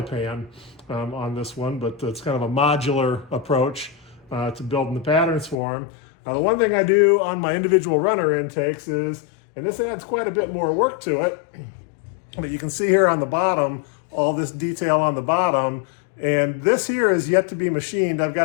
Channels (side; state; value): right; drops out; at 5.6 s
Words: pan on this one, but it's kind of a modular approach to building the patterns for them. The one thing I do on my individual runner intakes is, and this adds quite a bit more work to it, but you can see here on the bottom, all this detail on the bottom, and this here is yet to be machined. I've